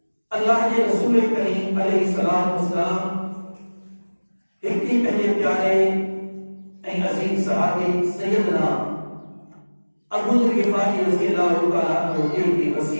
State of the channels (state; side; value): inverted; both; correlation -1.00